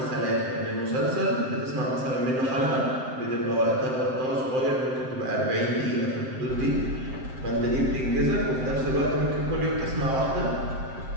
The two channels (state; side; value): late; left; 7.6 ms